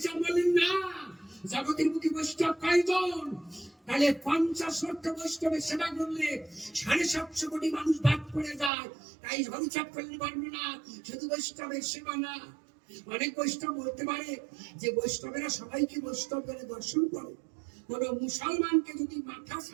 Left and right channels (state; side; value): drops out; left; at 8.7 s